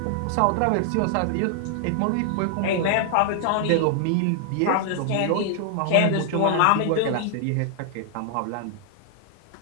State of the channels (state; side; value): different; both; correlation 0.00